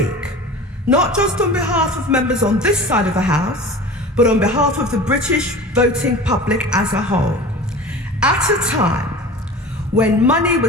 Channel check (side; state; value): both; normal; correlation 0.37